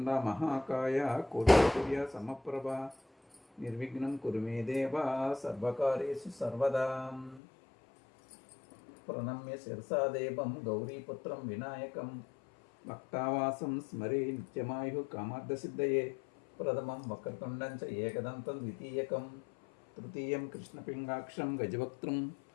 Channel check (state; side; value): drops out; right; at 7.4 s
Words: మహాకాయ కోటిసూర్య సమప్రభ నిర్విఘ్నం కురు మే దేవ సర్వకార్యేషు సర్వదా. ప్రణమ్య శిరసా దేవం గౌరీపుత్రం వినాయకం భక్తావాసం స్మరే నిత్యమాయు కామార్థసిద్ధయే ప్రథమం వక్రతుండం చ ఏకదంతం ద్వితీయకం తృతీయం కృష్ణపింగాక్షం గజవక్త్రం